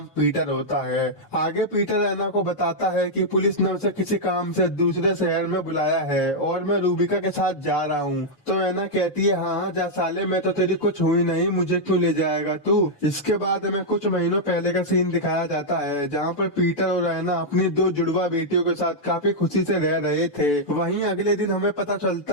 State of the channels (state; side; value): late; right; 6.9 ms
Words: पीटर होता है। आगे पीटर ऐना को बताता है कि पुलिस ने उसे किसी काम से दूसरे शहर में बुलाया है और मैं रूबिका के साथ जा रहा हूँ। तो ऐना कहती है, हाँ हाँ जा साले, मैं तो तेरी कुछ हुई नहीं, मुझे क्यों ले जाएगा तू। इसके बाद हमें कुछ महीनों पहले का सीन दिखाया जाता है जहाँ पर पीटर और ऐना अपनी दो जुड़वा बेटियों के साथ काफी खुशी से रह रहे थे। वहीं अगले दिन हमें पता